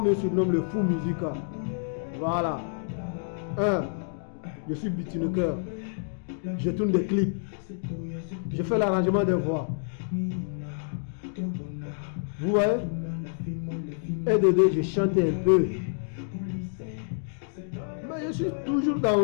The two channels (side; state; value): right; silent; digital silence